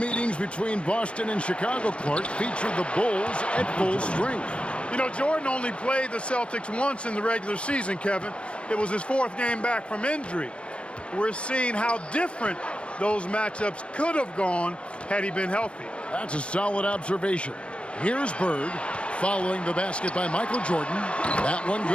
between Boston and Chicago, Clark, featured the Bulls at full strength. You know, Jordan only played the Celtics once in the regular season, Kevin. It was his 4th game back from injury. We're seeing how different those matchups could have gone had he been healthy. That's a solid observation. Here's Bird following the basket by Michael Jordan. That one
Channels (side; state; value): right; late; 0.059 ms